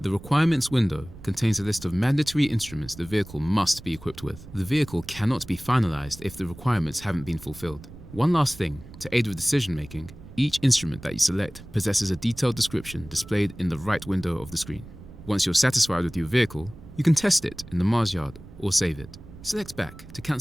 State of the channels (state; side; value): noise; right; rumble, 17 dB below the sound